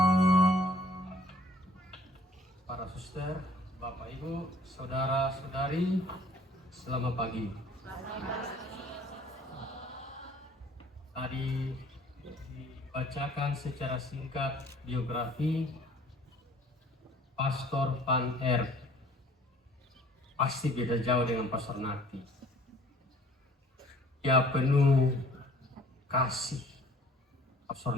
Para suster, Bapak Ibu, saudara-saudari, selamat pagi. Tadi dibacakan secara singkat biografi Pastor Van R. Pasti beda jauh dengan Pastor Nati. Dia penuh kasih. Pastor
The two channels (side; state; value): both; normal; correlation 0.55